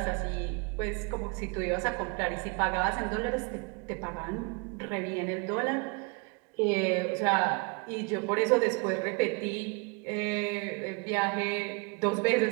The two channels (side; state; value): left; quieter; 32.2 dB